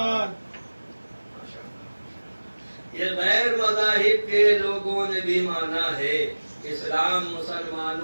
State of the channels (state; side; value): inverted; both; correlation -1.00